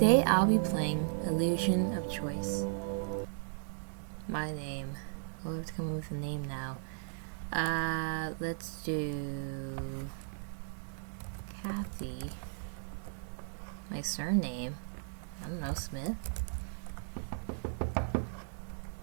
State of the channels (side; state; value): left; silent; digital silence